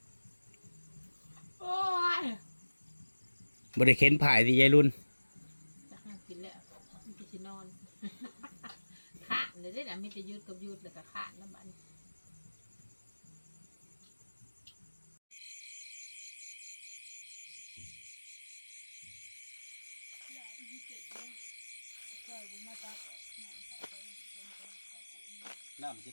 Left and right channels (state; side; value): inverted; both; correlation -1.00